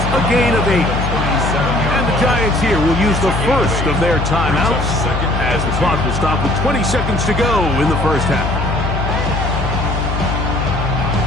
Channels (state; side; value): noise; left; hum, 2 dB below the sound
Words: gain of 8. And the Giants here will use the first of their timeouts as the clock will stop with 20 seconds to go in the first half.